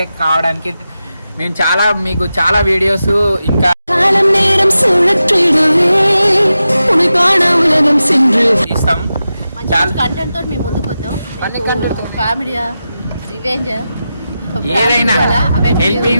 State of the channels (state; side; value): inverted; both; correlation -0.92